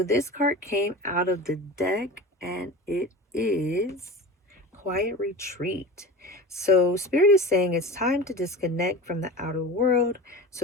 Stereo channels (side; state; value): both; normal; correlation 0.32